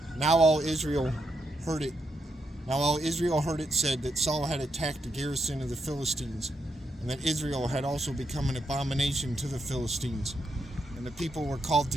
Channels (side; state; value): both; normal; correlation 0.81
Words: Now all Israel heard it. Now all Israel heard it said that Saul had attacked the garrison of the Philistines, and that Israel had also become an abomination to the Philistines. And the people were called